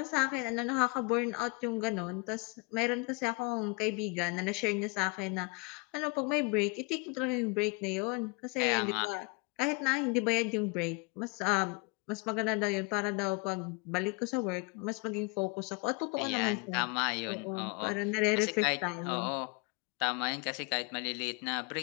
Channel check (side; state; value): right; quieter; 29.7 dB